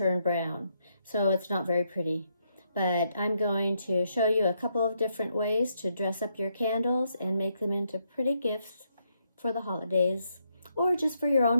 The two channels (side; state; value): both; inverted; correlation -0.77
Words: brown. So it's not very pretty. But I'm going to show you a couple of different ways to dress up your candles and make them into pretty gifts for the holidays, or just for your